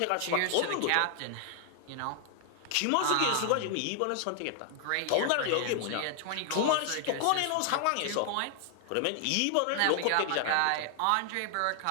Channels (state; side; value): different; both; correlation 0.00